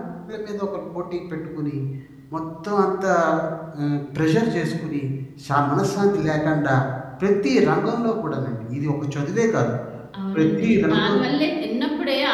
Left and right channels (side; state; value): both; identical; correlation 1.00